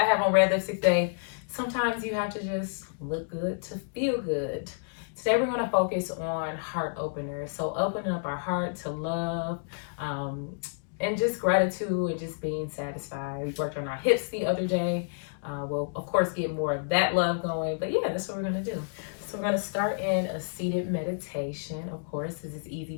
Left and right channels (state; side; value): silent; right; digital silence